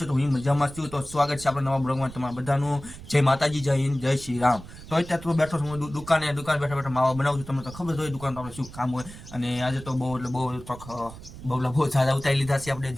તો હું મજામાં છું. તો સ્વાગત છે આપણા નવા બ્લોગમાં તમારા બધાનું. જય માતાજી, જય હિન્દ, જય શ્રી રામ. તો અત્યારે તો બેઠો છું હું દુકાને બેઠા માવા બનાવું છું. તમને તો ખબર હોય દુકાન તો આપણે શું કામ હોય. અને આજે તો બહુ સારા ઉતારી લીધા છે આપણે.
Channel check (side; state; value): right; noise; rumble, 15 dB below the sound